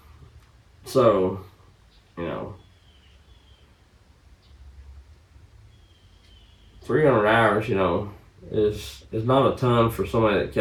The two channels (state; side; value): identical; both; correlation 1.00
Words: So, you know, 300 hours, you know, is not a ton for somebody that